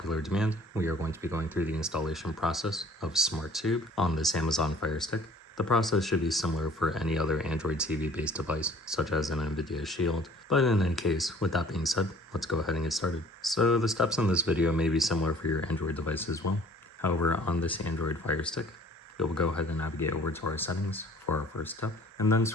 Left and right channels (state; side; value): normal; both; correlation 0.52